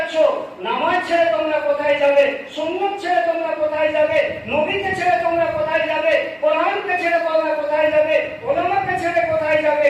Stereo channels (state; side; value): identical; both; correlation 1.00